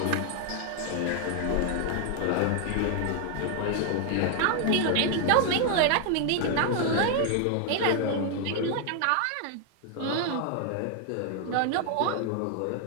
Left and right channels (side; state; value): both; different; correlation 0.00